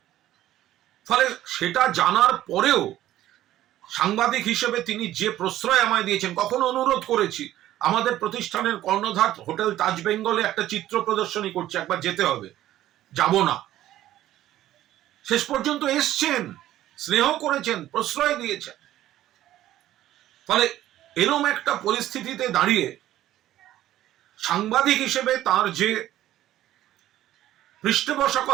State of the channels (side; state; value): left; quieter; 13.6 dB